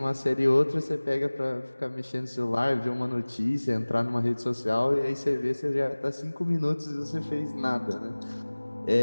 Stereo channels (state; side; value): inverted; both; correlation -1.00